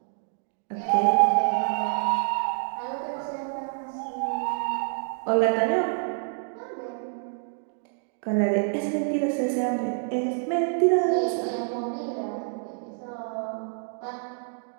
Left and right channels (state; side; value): silent; left; 59 dB below the other